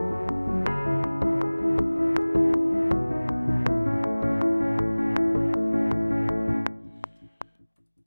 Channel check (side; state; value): both; inverted; correlation -1.00